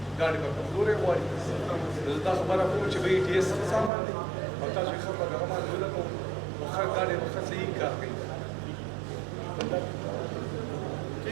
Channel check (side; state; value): left; drops out; at 3.9 s